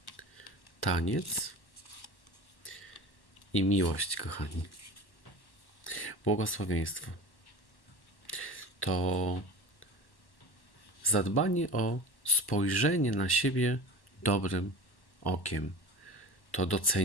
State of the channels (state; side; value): late; right; 1.1 ms